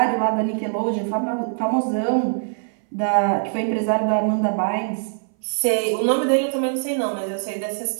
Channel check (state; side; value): silent; left; 60 dB below the other